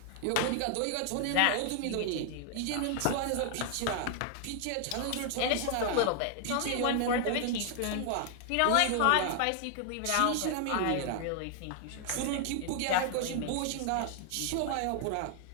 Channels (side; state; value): both; different; correlation 0.00